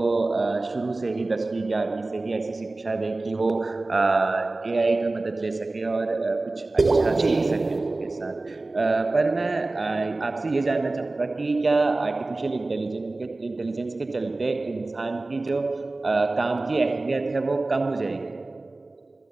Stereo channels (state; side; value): quieter; left; 3.1 dB